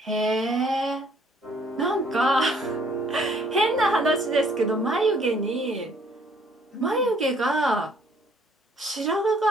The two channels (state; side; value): normal; both; correlation 0.62